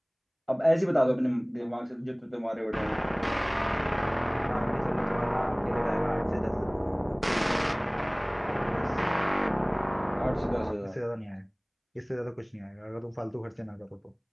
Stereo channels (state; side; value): identical; both; correlation 1.00